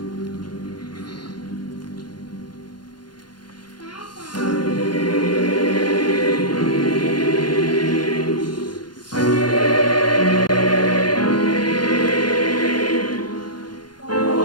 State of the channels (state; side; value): late; right; 0.71 ms